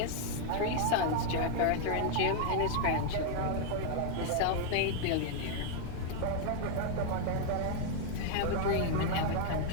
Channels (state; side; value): different; both; correlation 0.00